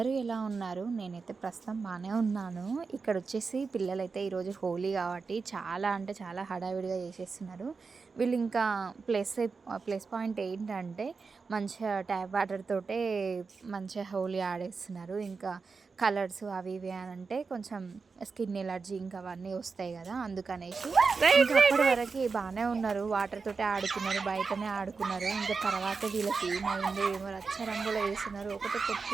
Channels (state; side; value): quieter; left; 4.7 dB